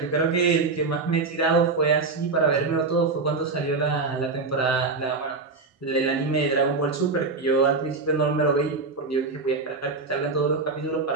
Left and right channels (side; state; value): left; quieter; 4.1 dB